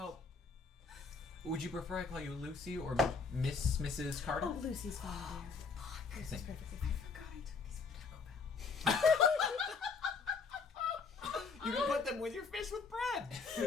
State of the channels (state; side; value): quieter; right; 4.9 dB